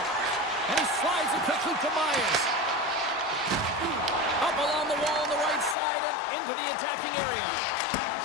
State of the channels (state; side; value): drops out; right; at 5.8 s